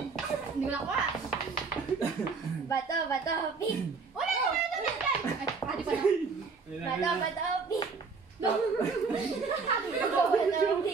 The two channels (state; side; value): quieter; left; 4.8 dB